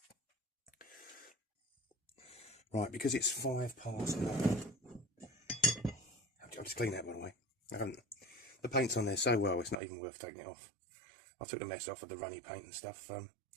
Right, because it's 5 past 9. I'll just clean that, by the way. The paint's on there so well, it's not even worth taking it off. I took the mess off of the runny paint and stuff. I'm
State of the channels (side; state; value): left; drops out; at 9.8 s